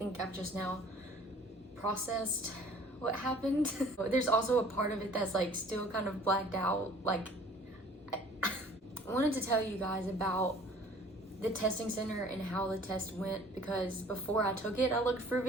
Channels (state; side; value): normal; both; correlation 0.51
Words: I've just now processed what happened. There's also a part of it that's like still kind of blacked out. Like I wanted to tell you guys about the testing center and how the test went, because before I took it I looked for